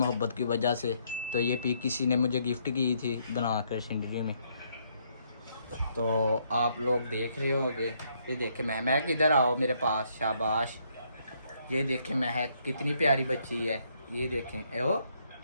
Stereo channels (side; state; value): both; inverted; correlation -0.71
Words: की वजह से। तो ये पिक किसी ने मुझे गिफ्ट की थी बनाकर जिंदगी में, तो आप लोग देख रहे होंगे। ये देखे महक इधर आओ मेरे पास, शाबाश। ये देखें महक कितनी प्यारी बच्ची है। ये देखें ओ,